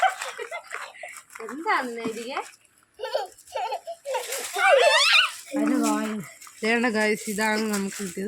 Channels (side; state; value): both; identical; correlation 1.00